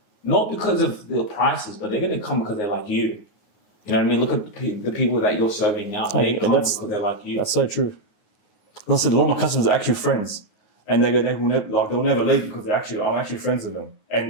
not because of the prices, but they're going to come because they like you. You know what I mean? Look at the people that you're serving now. They come because they like you. That's so true. As I said, a lot of my customers are actually friends, and they'll never leave because I'm actually friends with them,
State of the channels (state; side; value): late; right; 9.5 ms